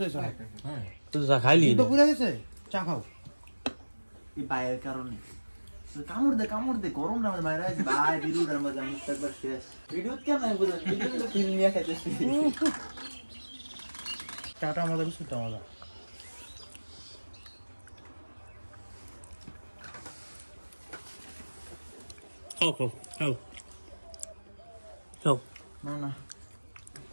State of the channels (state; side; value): inverted; both; correlation -1.00